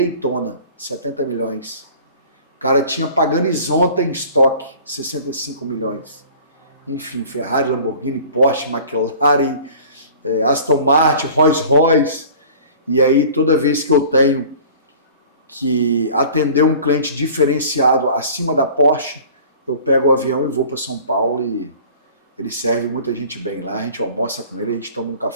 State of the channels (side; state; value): both; inverted; correlation -0.46